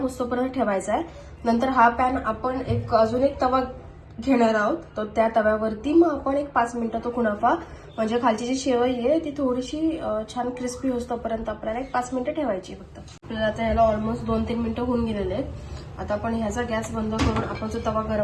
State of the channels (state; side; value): identical; both; correlation 1.00